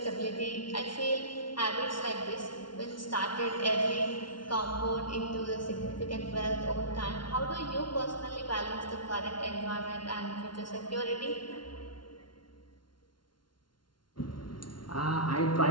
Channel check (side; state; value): right; late; 0.72 ms